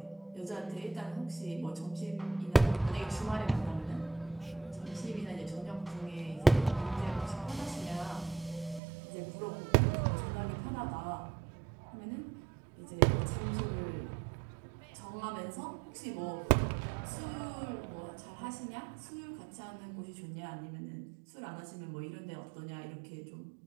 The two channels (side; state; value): left; drops out; at 8.8 s